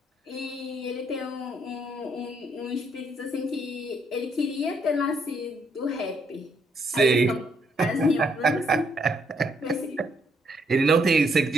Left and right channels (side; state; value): both; normal; correlation 0.72